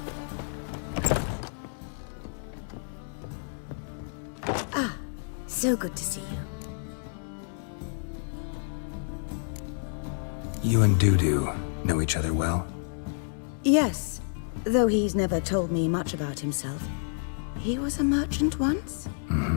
Ah, so good to see you. You and Dudu know each other well? Yes, though he's never told me much about himself. He was a merchant once?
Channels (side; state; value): right; silent; digital silence